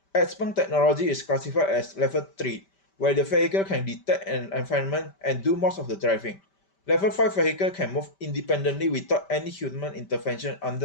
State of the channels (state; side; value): late; right; 5.1 ms